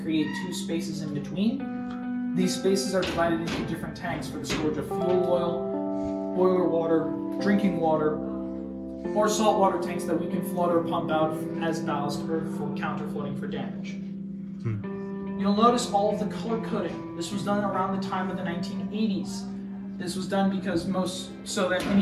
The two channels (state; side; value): identical; both; correlation 1.00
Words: create 2 spaces in between. These spaces are divided into different tanks for the storage of fuel oil, boiler water, drinking water, or saltwater tanks that we can flood or pump out as ballast or for counter-flooding for damage. You'll notice all of the color coding. This was done around the time of the 1980s. This was done because so that